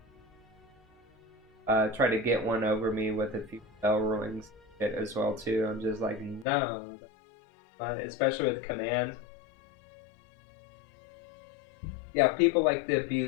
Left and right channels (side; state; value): right; drops out; at 6.5 s